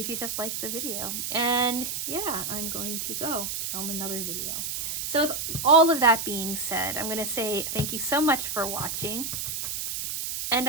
you just like the video. And yeah, I'm going to go film another video. So with all of that being said, I'm going to say thank you so much for watching,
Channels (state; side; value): noise; right; hiss, 3 dB below the sound